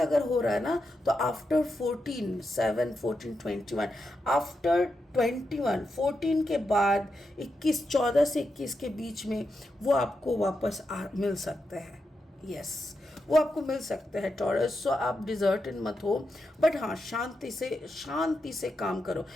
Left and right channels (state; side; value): normal; both; correlation 0.86